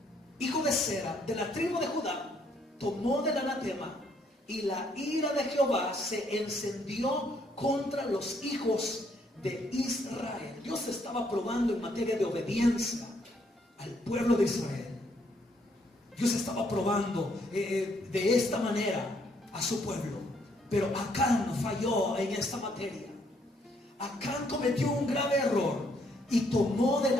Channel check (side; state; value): both; normal; correlation 0.70